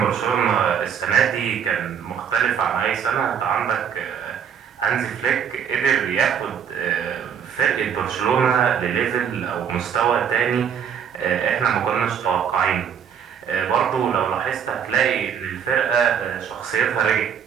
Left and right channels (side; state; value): left; quieter; 7.9 dB